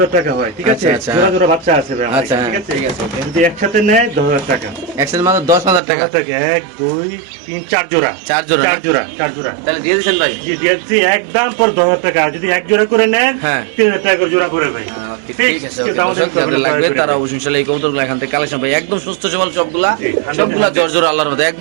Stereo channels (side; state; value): left; drops out; at 5.8 s